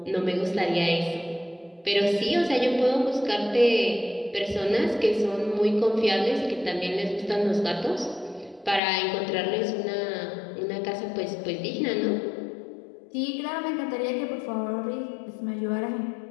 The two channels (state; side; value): drops out; right; at 8.8 s